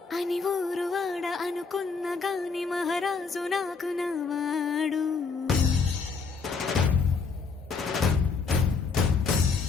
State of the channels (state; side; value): quieter; right; 4.9 dB